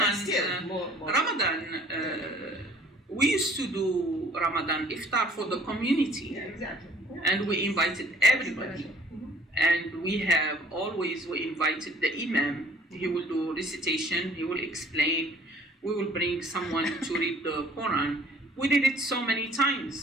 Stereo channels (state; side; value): normal; both; correlation 0.55